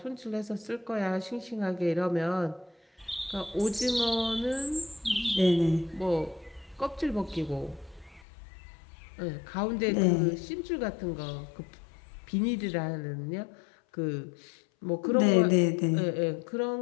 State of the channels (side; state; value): right; drops out; at 8.2 s